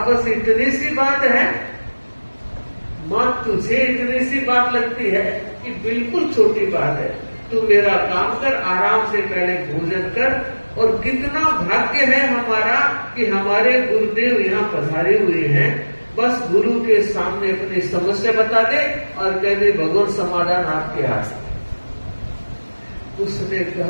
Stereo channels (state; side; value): inverted; both; correlation -1.00